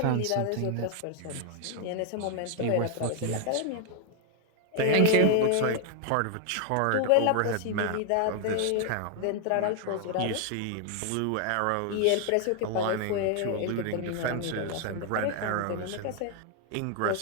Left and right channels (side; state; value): both; different; correlation 0.00